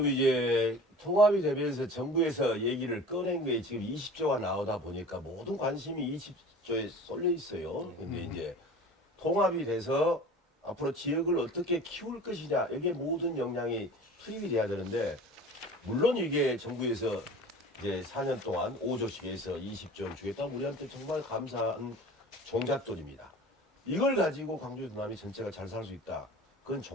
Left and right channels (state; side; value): normal; both; correlation 0.40